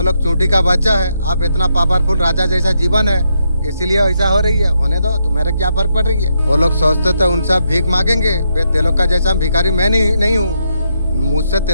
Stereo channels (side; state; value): both; inverted; correlation -0.79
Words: लोग चूंटी का बच्चा है, आप इतना पावरफुल राजा जैसा जीवन है, इसीलिए ऐसा हो रही है। होने दो, तुम्हारे क्या फर्क पड़ रही है? वो लोग सोचते थे उनसे भीख मांगेंगे, तेलों का जैसा भिखारी मैं नहीं हूँ। मुझसे